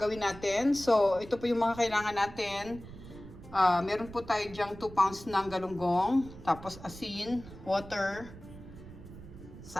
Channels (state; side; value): noise; right; rumble, 16 dB below the sound